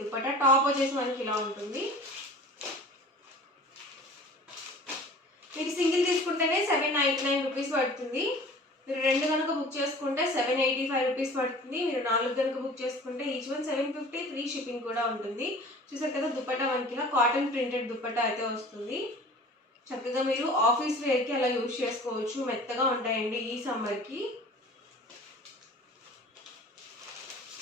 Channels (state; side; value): normal; both; correlation 0.43